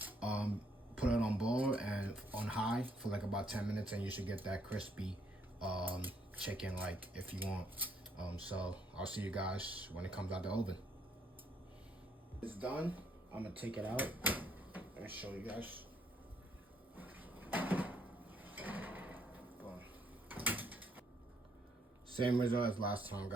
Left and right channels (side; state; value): both; normal; correlation 0.70